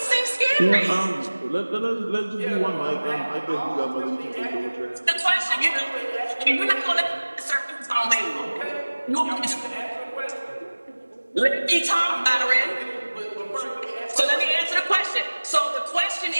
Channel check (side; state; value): both; inverted; correlation -1.00